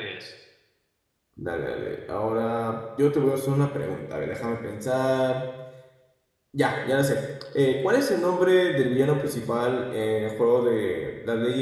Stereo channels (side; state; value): both; identical; correlation 1.00